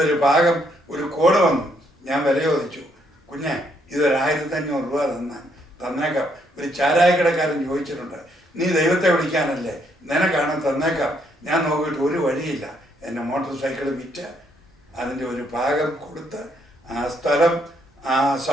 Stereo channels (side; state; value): both; normal; correlation 0.72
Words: ഒരു ഭാഗം ഒരു കോഡ് വന്നു. ഞാൻ വില ചോദിച്ചു, കുഞ്ഞെ ഇതൊരു 1500 രൂപ തന്നേക്കാം. ഒരു ചാരായക്കടക്കാരൻ ചോദിച്ചിട്ടുണ്ട്, നീ ദൈവത്തെ വിളിക്കാനല്ലേ, നിനക്കാണ് തന്നേക്കാം. ഞാൻ നോക്കിയിട്ട് ഒരു വഴിയില്ല. എൻ്റെ മോട്ടോർ സൈക്കിൾ വിറ്റ് അതിൻ്റെ ഒരു ഭാഗം കൊടുത്ത് ആ സ്ഥലം ആ